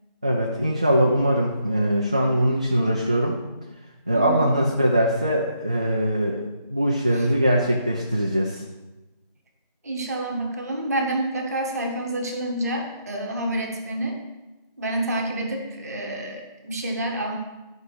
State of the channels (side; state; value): both; inverted; correlation -0.74